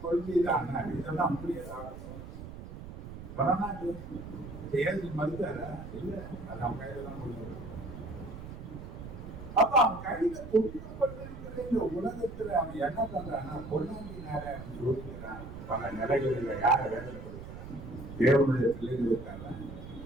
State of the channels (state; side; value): noise; right; rumble, 11 dB below the sound